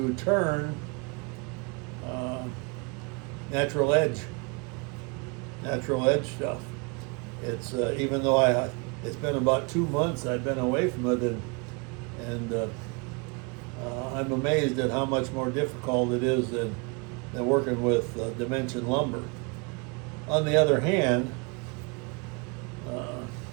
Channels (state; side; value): quieter; left; 32.0 dB